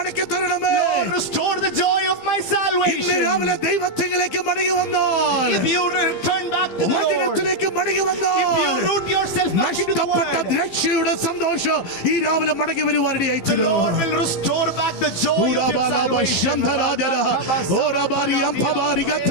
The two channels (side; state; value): right; late; 15 ms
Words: തരണമേ. Lord, restore the joy of my ഇന്ന് salvation. രാവിലെ ദൈവത്തിലേക്ക് മടങ്ങി വന്നാൽ, If you return back to the Lord, വചനത്തിലേക്ക് മടങ്ങി if വന്നാൽ, you root yourself back into the നഷ്ടപ്പെട്ട word, രക്ഷയുടെ സന്തോഷം ഈ രാവിലെ മടങ്ങി the വരുവാനിടയായിത്തീരും. Lord will restore back the joy of your salvation.